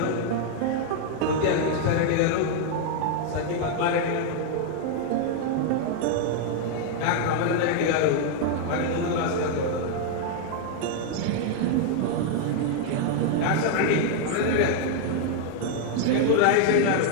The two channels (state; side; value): different; both; correlation 0.00